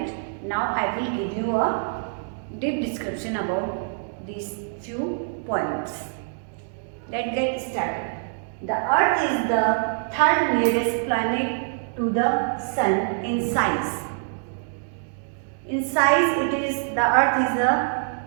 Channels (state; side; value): silent; left; 62 dB below the other